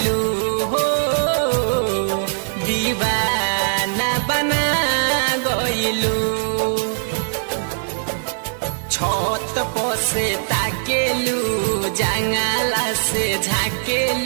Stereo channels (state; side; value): silent; left; digital silence